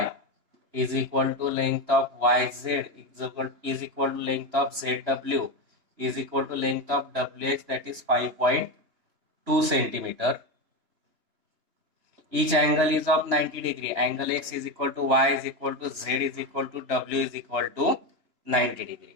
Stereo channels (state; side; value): late; left; 2.9 ms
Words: is equal to length of YZ is equal to length of ZW is equal to length of WX, that is 5.2 centimeter. Each angle is of 90 degree. Angle X is equal to Y is equal to Z is equal to W is equal to 90